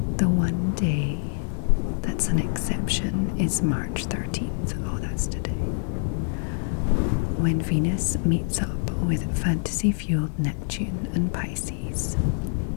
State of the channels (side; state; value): right; silent; digital silence